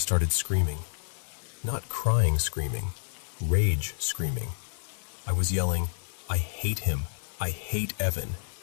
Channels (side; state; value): right; silent; 58 dB below the other